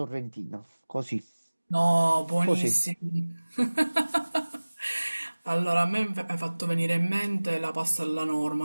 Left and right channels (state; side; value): inverted; both; correlation -1.00